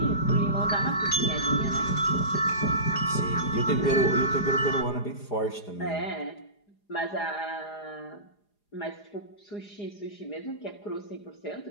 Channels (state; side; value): late; right; 4.9 ms